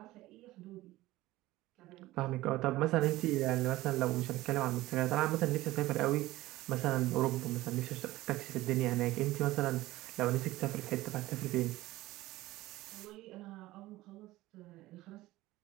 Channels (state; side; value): quieter; left; 17.5 dB